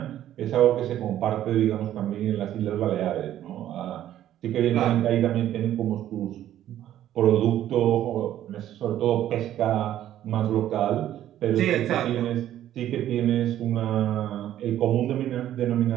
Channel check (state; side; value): quieter; left; 12.1 dB